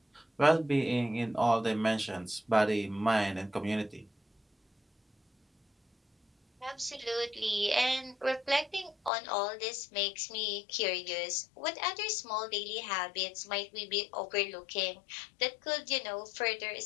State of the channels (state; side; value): drops out; right; at 9.1 s